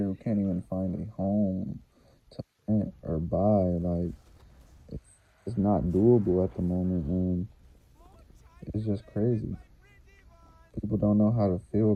who can't even find a home to rent or buy. Like, it's, it's not doable at the moment, and it's just crazy. People don't know how to feel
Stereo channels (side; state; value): both; identical; correlation 1.00